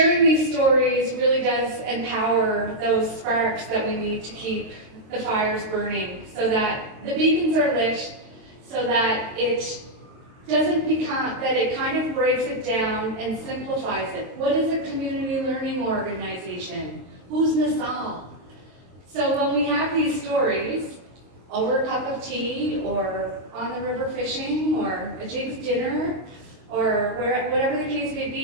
these stories really does empower those sparks that we need to keep the fires burning so that the beacons are lit, so that it doesn't become, that it kind of breaks it down and simplifies it. What is a community learning organization? Who's Nassau? So when we have these stories, over a cup of tea, or on the river fishing, or a Jig's dinner, or whatever the case may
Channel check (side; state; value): left; late; 22 ms